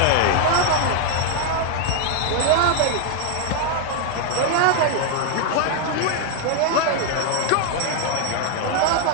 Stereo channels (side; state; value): both; different; correlation 0.00